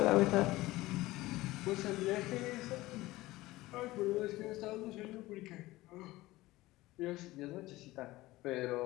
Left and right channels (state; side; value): quieter; right; 18.5 dB